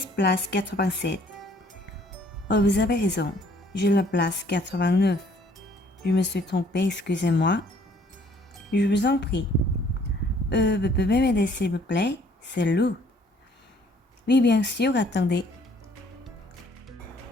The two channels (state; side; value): normal; both; correlation 0.60